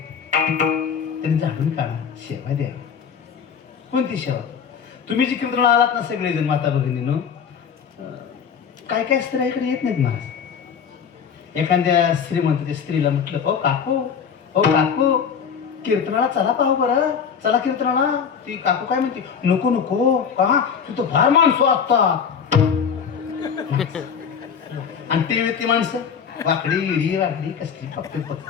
त्यांनी झाडून काढा, सेवा द्या. कोणती सेवा? तुम्ही जी कीर्तनाला आलात ना सगळेजण माता भगिनीनं, काय काय स्त्रियाकडे येत नाहीत महाराज. एखाद्या श्रीमंत स्त्रीला म्हटलं, ओ काकू, ओ काकू, कीर्तनाला चला पाहू बरं, चला कीर्तनाला. ती काकू काय म्हणते, नको नको, का तिथं फार माणसं असतात. आणि ते माणसं वाकडी इडी वाकडी कसली फक्त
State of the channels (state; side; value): quieter; right; 7.0 dB